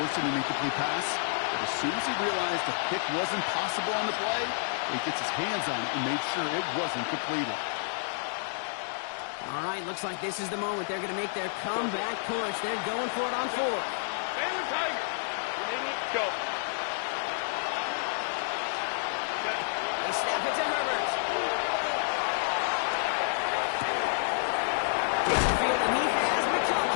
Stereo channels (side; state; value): right; silent; digital silence